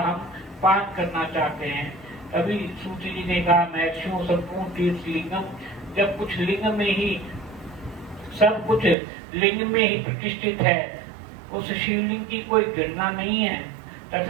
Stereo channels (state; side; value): drops out; left; at 9.0 s